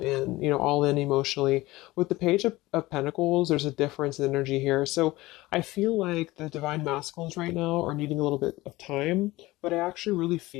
emotionally. With the Page of Pentacles, there's a difference in energy here. So I feel like the Divine Masculines right now are needing a little bit of time, but I actually really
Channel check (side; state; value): right; quieter; 19.2 dB